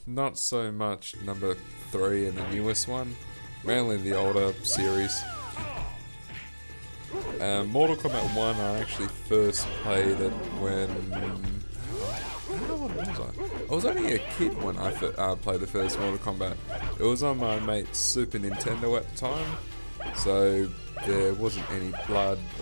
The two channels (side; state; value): both; inverted; correlation -1.00